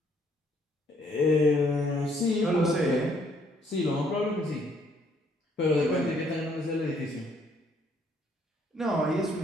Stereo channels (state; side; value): normal; both; correlation 0.66